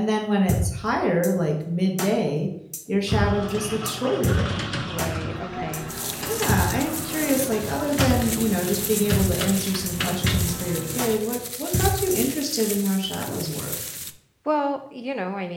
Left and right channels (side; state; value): both; identical; correlation 1.00